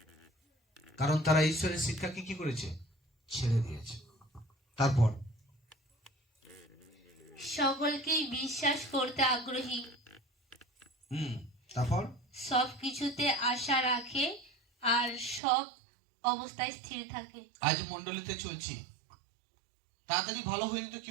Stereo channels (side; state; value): left; drops out; at 15.4 s